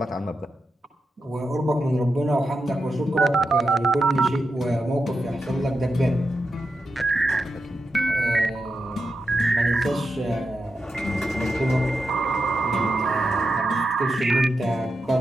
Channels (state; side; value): normal; both; correlation 0.87